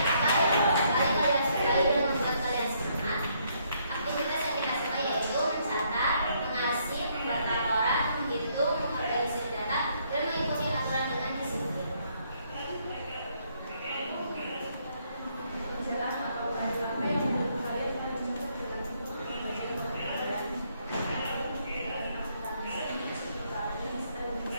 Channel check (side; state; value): both; inverted; correlation -0.71